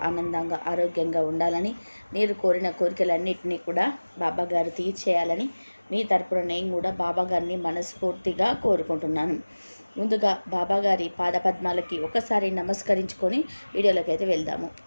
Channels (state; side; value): inverted; both; correlation -1.00